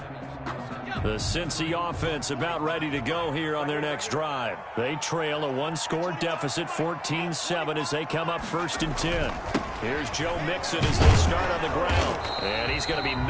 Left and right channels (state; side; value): identical; both; correlation 1.00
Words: The Cincy offense about ready to go here on their next drive. They trail a 1-score deficit, 14-7, as they come up 1st and 10. Here's Joe Mixon as they start on the ground. And he's going to be